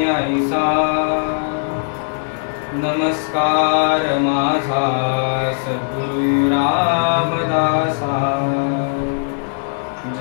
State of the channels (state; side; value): silent; right; 60 dB below the other